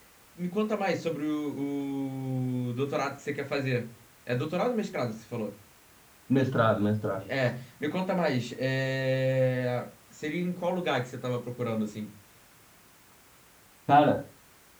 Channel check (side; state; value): both; identical; correlation 1.00